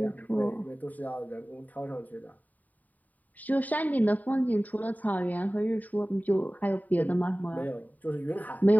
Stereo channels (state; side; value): late; right; 0.078 ms